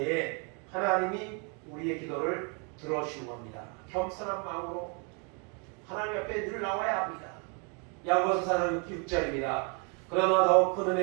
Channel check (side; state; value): left; quieter; 36.0 dB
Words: 하나님이 우리의 기도를 들어주시는 겁니다. 겸손한 마음으로 하나님 앞에 늘 나와야 합니다. 야고보서 4장 6절입니다. 그러나 더욱 큰